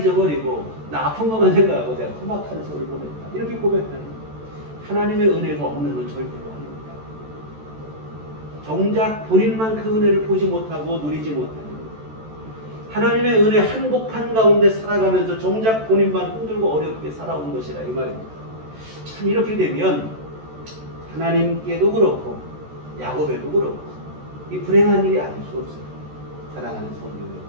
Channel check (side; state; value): left; late; 14 ms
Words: 나 아픈 것만 생각하고 내가 험악한 세월을 보냈다. 이렇게 고백하는 거예요. 하나님의 은혜가 없는 건 절대로 아닙니다. 정작 본인만 그 은혜를 보지 못하고 누리지 못하는 거예요. 하나님의 은혜 한복판 가운데 살아가면서 정작 본인만 힘들고 어렵게 살아온 것이라 이 말입니다. 참 이렇게 되면 하나님께도 그렇고 야곱에도 그렇고 이 불행한 일이 아닐 수 없어요. 사랑하는 성도